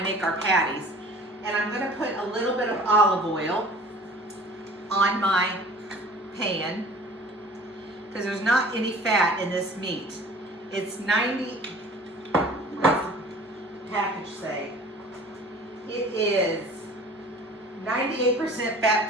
our patties. And I'm going to put a little bit of olive oil on my pan because there's not any fat in this meat. It's 90, what's the package say? It is 98%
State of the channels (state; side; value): normal; both; correlation 0.46